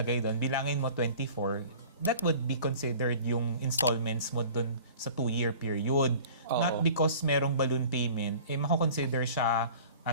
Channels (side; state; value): both; inverted; correlation -0.44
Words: doon, bilangin mo 24, that would be considered yung installments mo doon sa 2-year period. Not because merong balloon payment, mako-consider siya